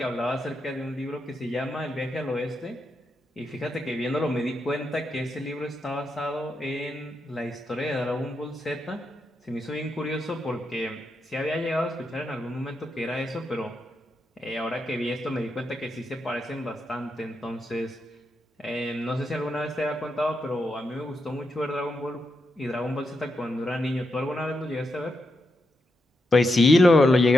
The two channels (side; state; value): both; normal; correlation 0.85